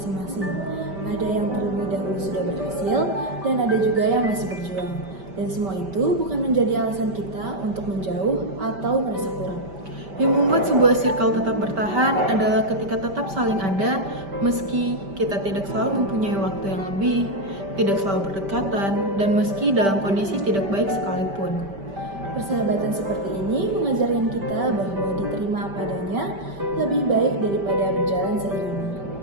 Ada yang terlebih dahulu sudah berhasil, dan ada juga yang masih berjuang. Dan semua itu bukan menjadi alasan kita untuk menjauh atau merasa kurang. Yang membuat sebuah circle tetap bertahan adalah ketika tetap saling ada, meski kita tidak selalu mempunyai waktu yang lebih, tidak selalu berdekatan, dan meski dalam kondisi tidak baik sekalipun. Persahabatan seperti ini mengajarkan kita bahwa diterima apa adanya lebih baik daripada berjalan seiringan.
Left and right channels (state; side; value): late; left; 5.1 ms